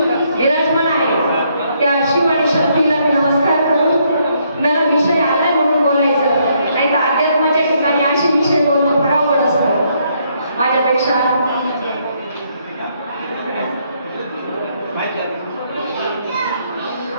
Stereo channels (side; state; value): both; inverted; correlation -0.72